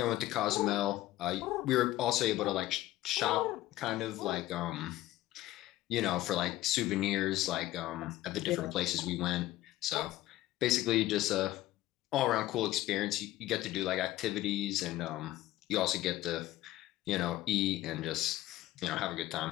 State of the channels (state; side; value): quieter; right; 15.8 dB